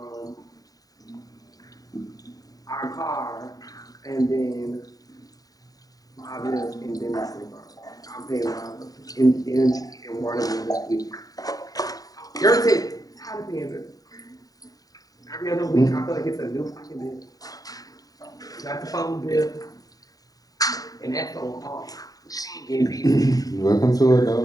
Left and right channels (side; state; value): right; late; 0.18 ms